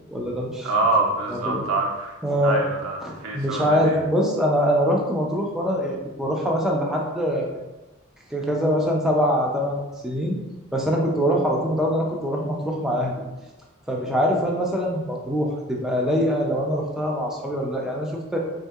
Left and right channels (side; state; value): both; normal; correlation 0.44